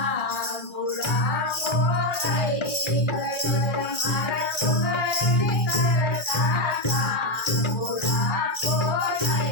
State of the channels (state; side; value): late; right; 2.4 ms